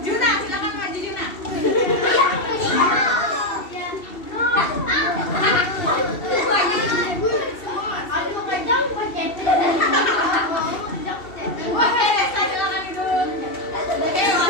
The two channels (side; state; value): right; late; 2.7 ms